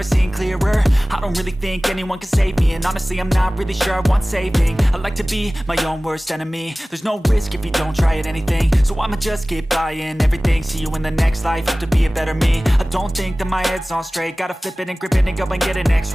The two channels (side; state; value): both; normal; correlation 0.98